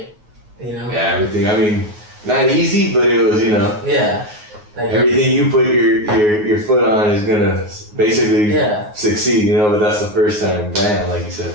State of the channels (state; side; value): late; left; 9.5 ms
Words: Yeah, everything. I mean, not easy, but it was, Yeah. Like everything you put your foot on is gonna basically succeed, you know. But that's the first time, bam, like you said.